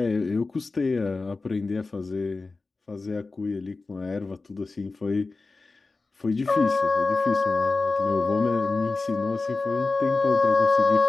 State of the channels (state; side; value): quieter; right; 3.7 dB